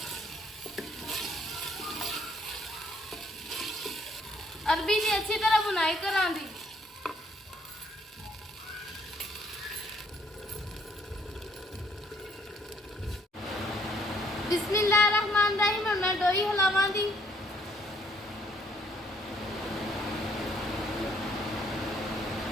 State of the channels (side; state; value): both; normal; correlation 0.66